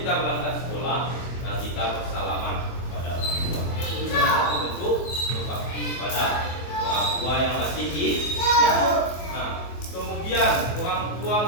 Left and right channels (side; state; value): right; late; 24 ms